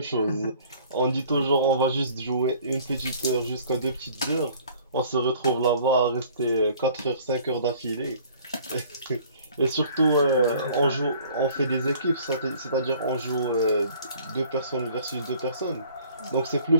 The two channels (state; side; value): inverted; both; correlation -0.53